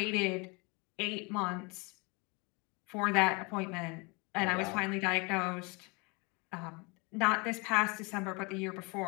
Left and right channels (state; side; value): quieter; right; 29.4 dB